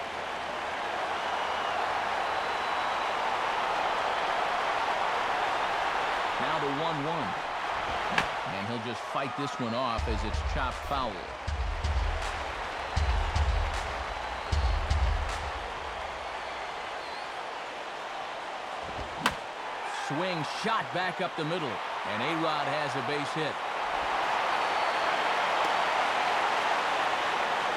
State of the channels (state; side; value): identical; both; correlation 1.00